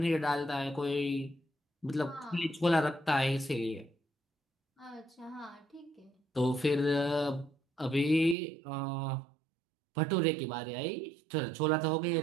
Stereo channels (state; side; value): drops out; left; at 8.3 s